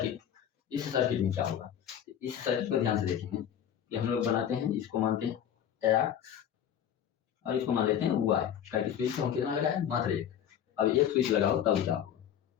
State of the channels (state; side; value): quieter; right; 9.5 dB